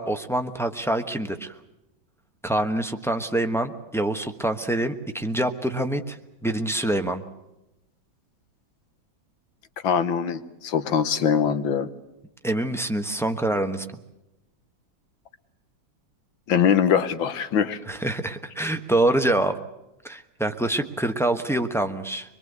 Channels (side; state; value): both; normal; correlation 0.43